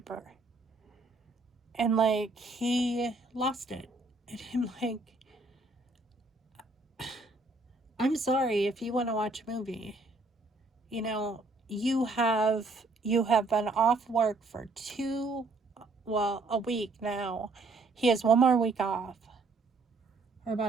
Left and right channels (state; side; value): quieter; left; 3.2 dB